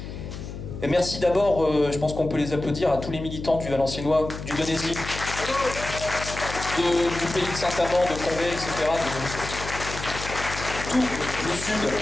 Et merci d'abord, je pense qu'on peut les applaudir, à tous les militants du Valenciennois, du Donésie, du pays de Saint-Amand, de Condé, etc., de tout le sud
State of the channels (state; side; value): noise; left; hum, 9 dB below the sound